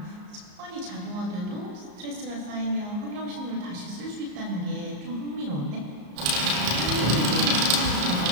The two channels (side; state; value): left; late; 34 ms